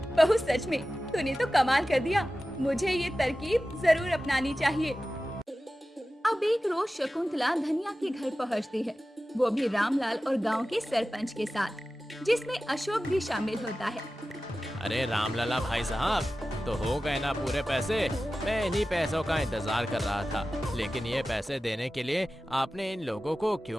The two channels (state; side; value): normal; both; correlation 0.95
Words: बहू सच में तूने तो कमाल कर दिया, मुझे ये तरकीब जरूर अपनानी चाहिए। अब एक रोज शकुंतला धनिया के घर पहुंचती है, वो भी रामलाल और गांव के सरपंच के साथ, जिसमें अशोक भी शामिल होता है। अरे रामलला भाई साहब, तो हो गए ना पूरे पैसे? मैं इन्हीं पैसों का इंतजार कर रहा था, लेकिन ये पैसे देने के लिए आपने इन लोगों को